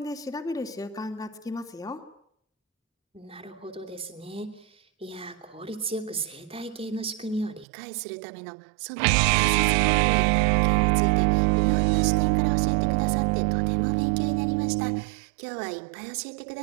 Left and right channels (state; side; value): drops out; left; at 7.7 s